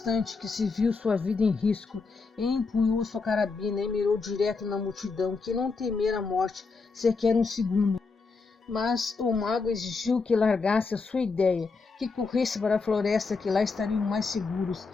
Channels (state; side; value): quieter; right; 4.4 dB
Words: que se viu sua vida em risco, e empunhou sua carabina e mirou direto na multidão, que não temera a morte sequer um segundo. Mas o mago exigiu que largasse a sua ideia, que corresse para a floresta, que lá estariam mais seguros,